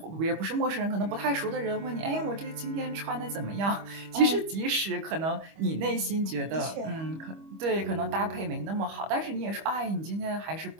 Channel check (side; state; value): left; late; 25 ms